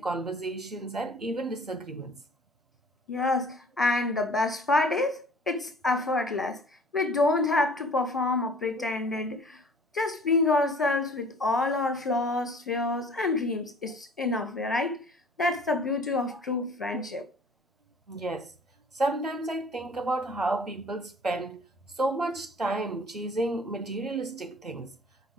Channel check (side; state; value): both; normal; correlation 0.50